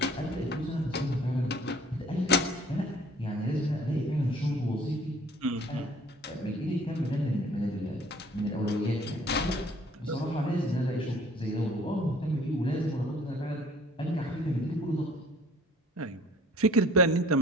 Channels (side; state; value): both; normal; correlation 0.52